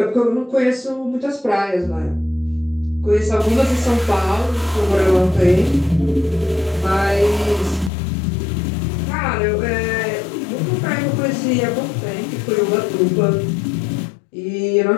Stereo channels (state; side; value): drops out; right; at 7.9 s